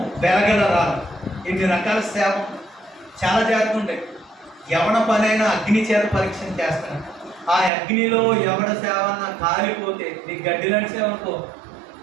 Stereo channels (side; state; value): left; drops out; at 7.7 s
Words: వెలగల రాళ్ళు, ఇన్ని రకాల సేవ చాలా చేస్తుంటాయి. ఎవడ పనైనా అగ్ని చేత పరీక్ష చేస్తాను. ఆ అగ్నిలో ఎవడ సేవ అన్నా కాలిపోతే, నీకు గడ్డి లాంటి సేవ అనుకో